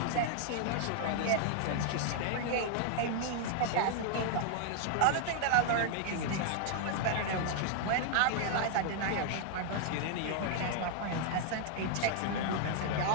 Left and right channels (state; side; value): different; both; correlation -0.01